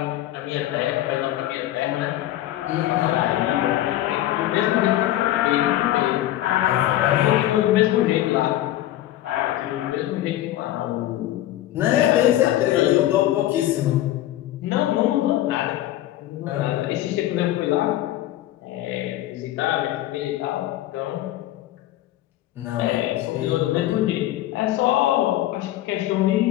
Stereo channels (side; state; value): right; quieter; 14.2 dB